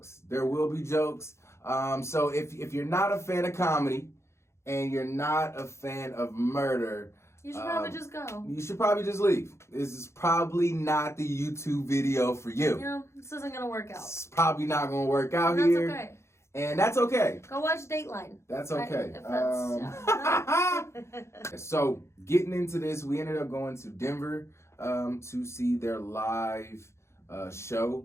There will be jokes. So if you're not a fan of comedy and you're not a fan of murder, You should probably just go. You should probably just leave. This is probably not the YouTube video for you. You know, this isn't gonna work out. It's probably not gonna work out That's here. okay. And that's okay. Go watch Dateline. That's okay. If So getting into this, we ended up going to Denver to see their live show.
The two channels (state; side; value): late; right; 0.13 ms